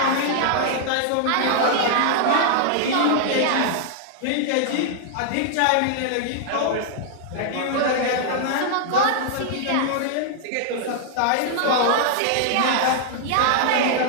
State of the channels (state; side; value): different; both; correlation -0.01